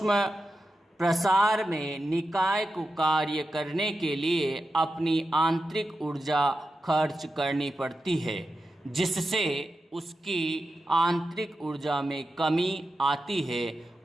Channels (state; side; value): normal; both; correlation 0.90